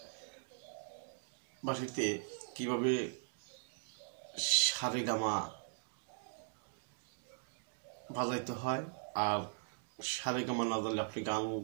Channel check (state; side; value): silent; left; digital silence